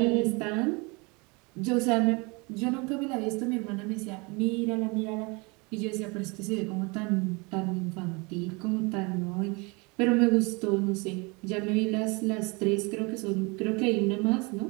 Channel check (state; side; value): quieter; left; 28.5 dB